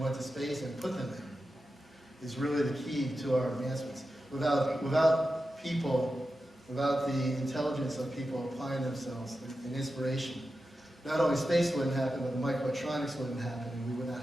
went to space and put them there is really the key to our advancements. Without people, without the intelligence of people applying themselves and inspiration, not only space wouldn't happen, but the microelectronics wouldn't happen, and we would not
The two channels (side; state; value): both; normal; correlation 0.91